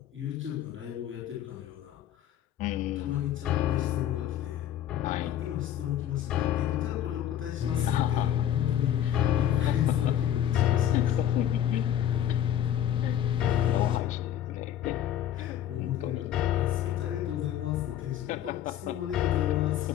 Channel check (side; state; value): right; quieter; 11.0 dB